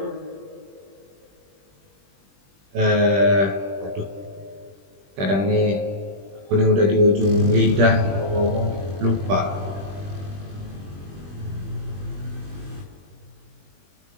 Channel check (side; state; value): left; late; 21 ms